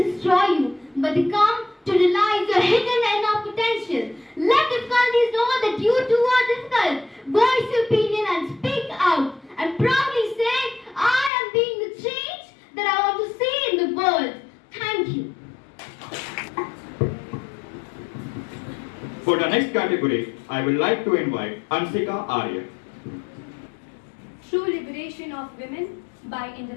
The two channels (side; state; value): right; drops out; at 11.3 s